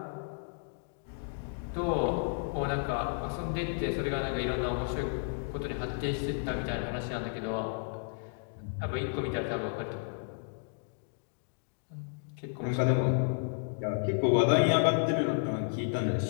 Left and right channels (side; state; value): right; silent; digital silence